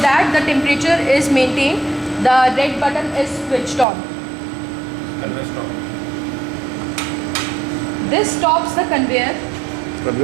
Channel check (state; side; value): drops out; left; at 3.9 s